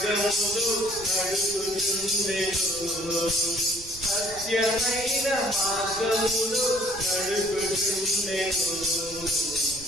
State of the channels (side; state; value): right; noise; rumble, 18 dB below the sound